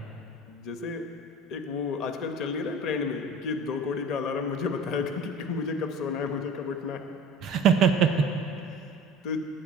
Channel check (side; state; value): both; normal; correlation 0.40